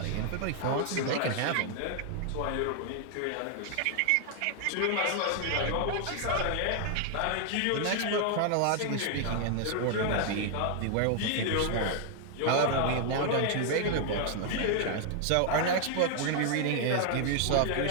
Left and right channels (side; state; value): both; different; correlation 0.00